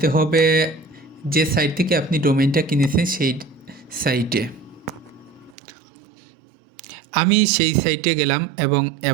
হবে যে সাইট থেকে আপনি ডোমেইনটা কিনেছেন সেই সাইটে। আমি সেই সাইটে গেলাম এবং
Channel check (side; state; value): left; drops out; at 5.6 s